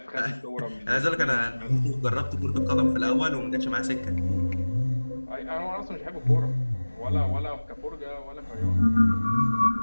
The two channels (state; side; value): inverted; both; correlation -1.00